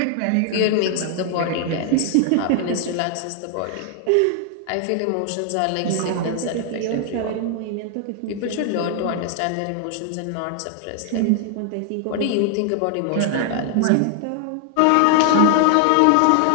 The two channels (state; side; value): different; both; correlation 0.00